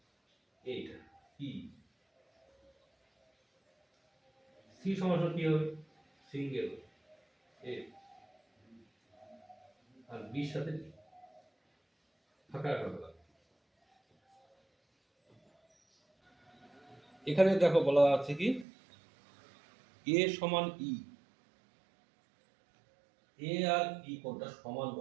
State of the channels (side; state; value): left; drops out; at 18.7 s